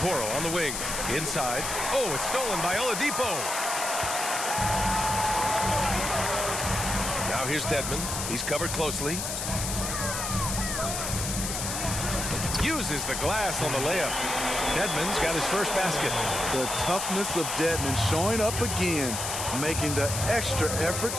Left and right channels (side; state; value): left; noise; hiss, 3 dB below the sound